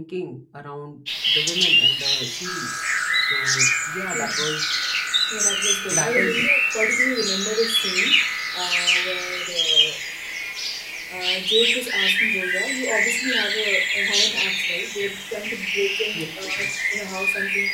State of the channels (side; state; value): both; identical; correlation 1.00